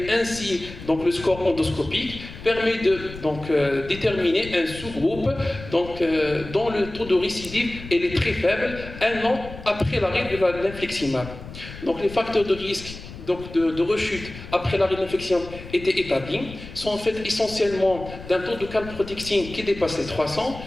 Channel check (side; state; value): left; noise; rumble, 14 dB below the sound